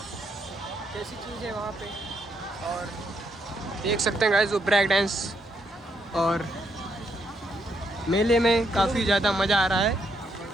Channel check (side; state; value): both; normal; correlation 0.76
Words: कैसी चीज़ है वहाँ पे, और देख सकते हैं गाइस वो ब्रेक डांस, और मेले में काफ़ी ज़्यादा मज़ा आ रहा है